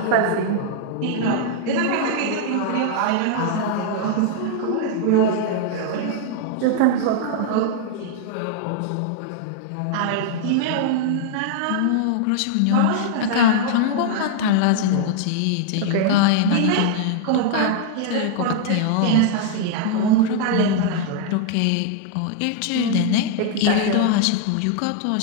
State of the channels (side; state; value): both; different; correlation 0.00